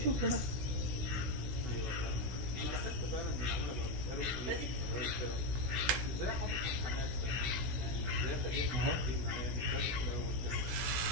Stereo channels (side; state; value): left; late; 16 ms